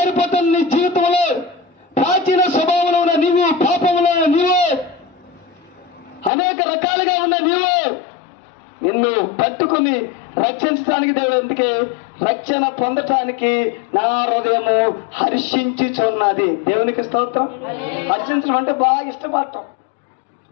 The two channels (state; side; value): drops out; right; at 6.3 s